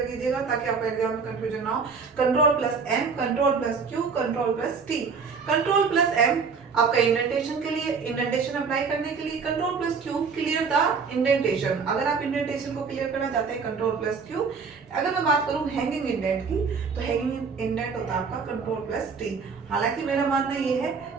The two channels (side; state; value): left; quieter; 5.4 dB